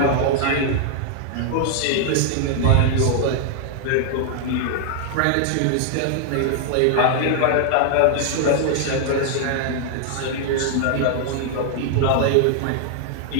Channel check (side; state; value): both; different; correlation 0.00